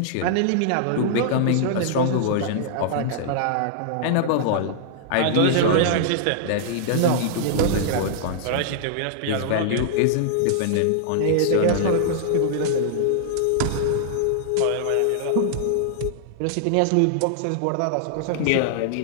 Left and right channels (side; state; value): both; different; correlation -0.01